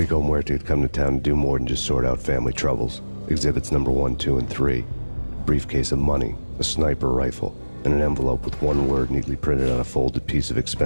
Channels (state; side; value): inverted; both; correlation -1.00